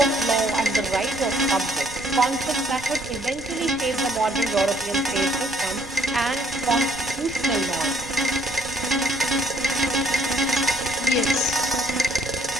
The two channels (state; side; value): noise; right; rumble, 18 dB below the sound